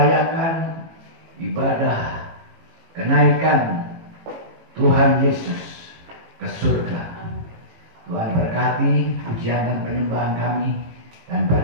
ibadah kenaikan Tuhan Yesus ke surga. Tuhan berkati pujian dan penyembahan kami dan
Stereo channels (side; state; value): left; late; 18 ms